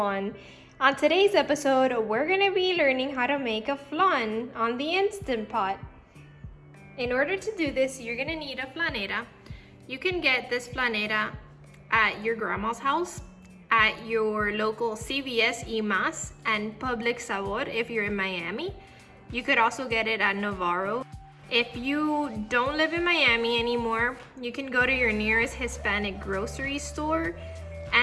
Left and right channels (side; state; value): both; identical; correlation 1.00